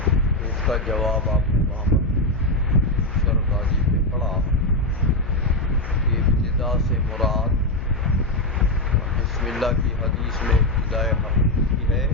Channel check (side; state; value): left; noise; hum, 8 dB below the sound